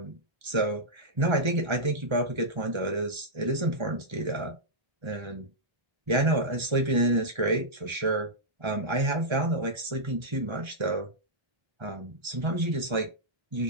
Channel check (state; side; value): late; left; 1.3 ms